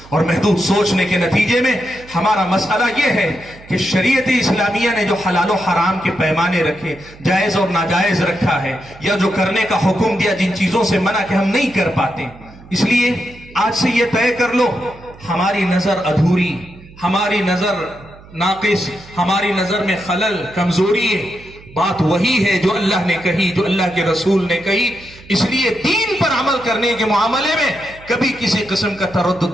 اور محدود سوچنے کے نتیجے میں ہمارا مسئلہ یہ ہے کہ شریعت اسلامیہ نے جو حلال و حرام کے پیمانے رکھے، جائز اور ناجائز رکھا ہے، یا جو کرنے کا حکم دیا جن چیزوں سے منع کہ ہم نہیں کر پاتے، اس لیے آج سے یہ طے کر لو ہماری نظر ادھوری، ہماری نظر ناقص، ہماری نظر میں خلل، کمزوری ہے. بات وہی ہے جو اللہ نے کہی، جو اللہ کے رسول نے کہی. اس لیے دین پر عمل کرنے کے معاملے میں کبھی کسی قسم کا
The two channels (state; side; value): noise; right; hum, 21 dB below the sound